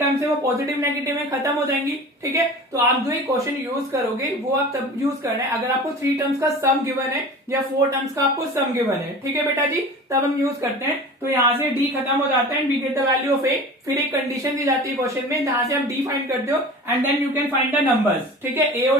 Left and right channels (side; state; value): both; normal; correlation 0.37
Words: है वो पॉजिटिव नेगेटिव में खत्म हो जाएंगी, ठीक है। तो आप जो ये क्वेश्चन यूज करोगे वो आप तब यूज करना है अगर आपको 3 टर्म्स का सम गिवन है या 4 टर्म्स का आपको सम गिवन है, ठीक है बेटा जी। तब हम यूज करते हैं। तो यहाँ से डी खत्म हो जाता है and we get the value of a. फिर एक कंडीशन दी जाती है क्वेश्चन में, जहां से आप डी फाइंड करते हो and then you can find the numbers, ठीक है। ए